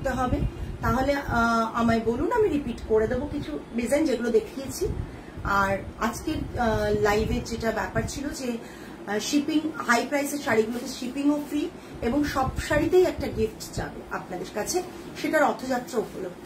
হবে, তাহলে আমায় বলুন, আমি রিপিট করে দেবো কিছু ডিজাইন যেগুলো দেখিয়েছি। আর আজকের লাইভে যেটা ব্যাপার ছিল যে শিপিং, হাই প্রাইসের শাড়িগুলোতে শিপিংও ফ্রি এবং সব শাড়িতেই একটা গিফট যাবে আপনাদের কাছে, সেটা রথযাত্রা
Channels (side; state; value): both; identical; correlation 1.00